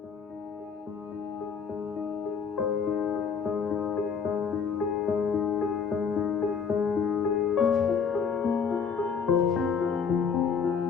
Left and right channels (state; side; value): quieter; right; 6.1 dB